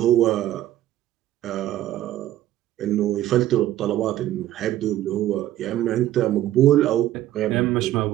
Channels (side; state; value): left; quieter; 13.6 dB